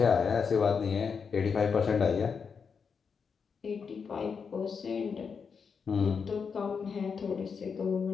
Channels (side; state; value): right; quieter; 5.9 dB